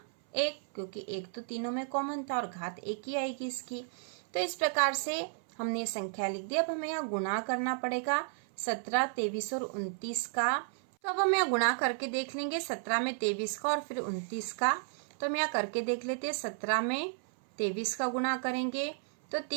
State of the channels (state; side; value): silent; left; 56 dB below the other